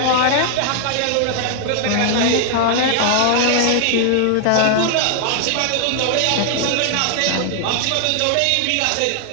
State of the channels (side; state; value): both; different; correlation 0.00